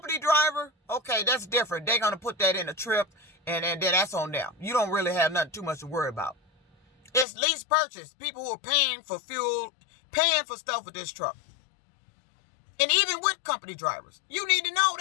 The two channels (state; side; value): drops out; right; at 7.2 s